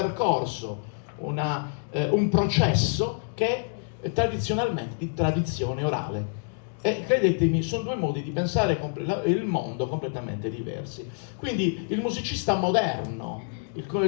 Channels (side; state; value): right; silent; digital silence